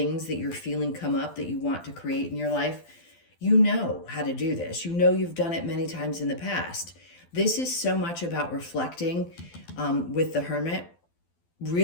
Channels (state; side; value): late; right; 12 ms